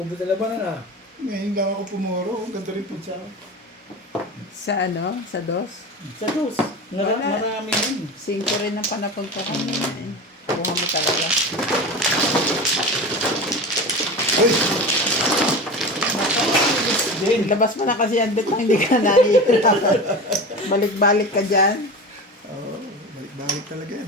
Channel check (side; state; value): both; normal; correlation 0.29